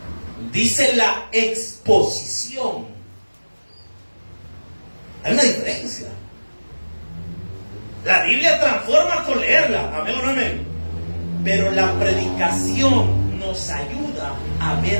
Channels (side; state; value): both; inverted; correlation -1.00